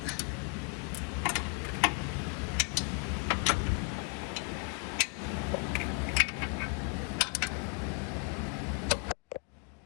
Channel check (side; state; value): right; quieter; 34.4 dB